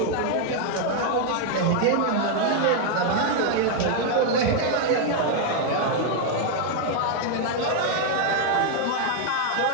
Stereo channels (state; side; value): different; both; correlation 0.00